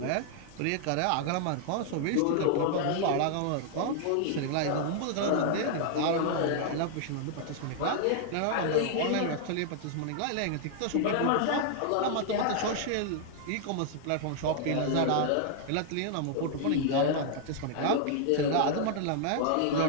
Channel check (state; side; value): different; both; correlation -0.01